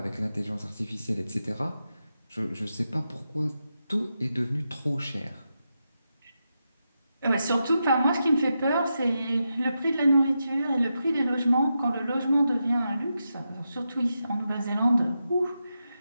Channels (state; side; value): inverted; both; correlation -0.88